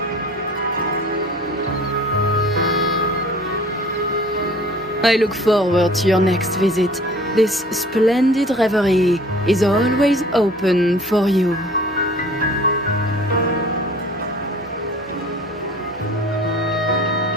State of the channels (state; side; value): normal; both; correlation 0.48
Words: I look forward to your next visit. This splendid reverie is always open for you.